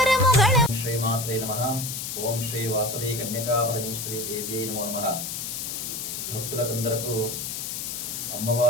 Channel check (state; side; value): noise; left; hiss, 5 dB below the sound